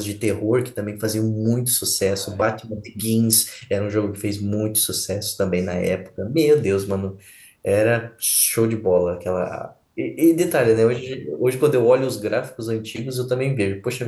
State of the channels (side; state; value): both; identical; correlation 1.00